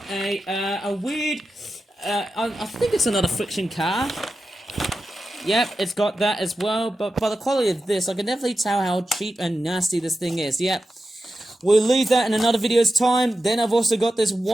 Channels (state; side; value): normal; both; correlation 0.91